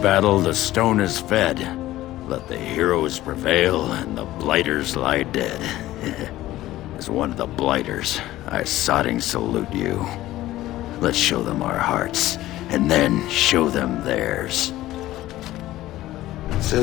battle the stone is fed, let the heroes prevail and the blighters lie dead. As one of the blighters, I sodding salute you. Let's show them our hearts, and then show them theirs.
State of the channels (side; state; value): right; quieter; 15.6 dB